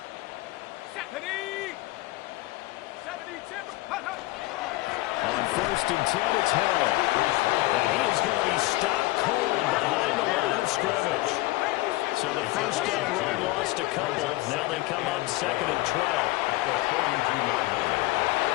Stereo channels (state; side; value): quieter; right; 19.8 dB